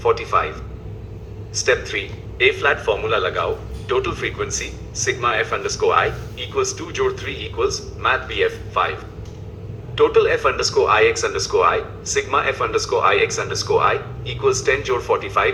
45. Step 3 A flat formula लगाओ, total frequency sigma f underscore I equals 2 जोड़ 3 equals math BF 5. Total f underscore I x underscore I sigma f underscore I x underscore I equals 10 जोड़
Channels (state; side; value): identical; both; correlation 1.00